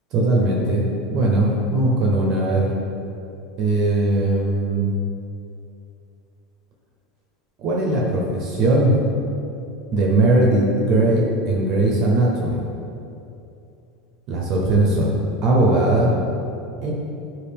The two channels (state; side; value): normal; both; correlation 0.31